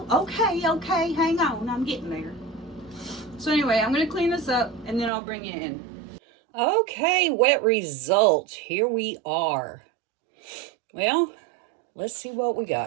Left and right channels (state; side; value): drops out; left; at 5.1 s